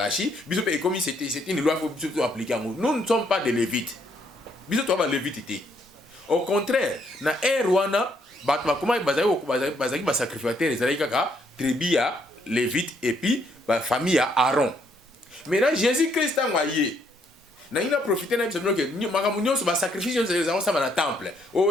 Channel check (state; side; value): normal; both; correlation 0.71